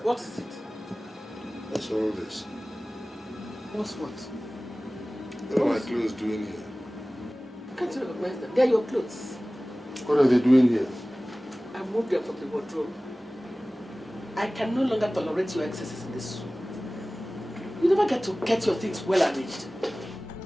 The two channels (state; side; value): normal; both; correlation 0.98